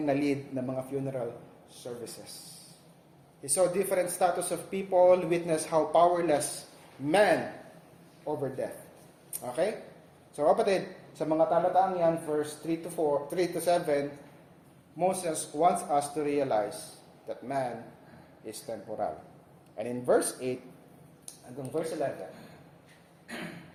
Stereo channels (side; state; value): both; identical; correlation 1.00